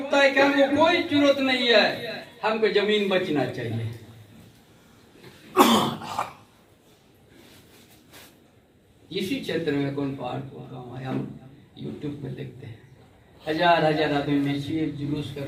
है कि हमको कोई जरूरत नहीं है, हमको जमीन बचना चाहिए। इसी क्षेत्र में कौन पहाड़पुर गांव है, हम यूट्यूब पे देखते हैं, हजार हजार आदमी मिलकर जुलूस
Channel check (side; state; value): both; identical; correlation 1.00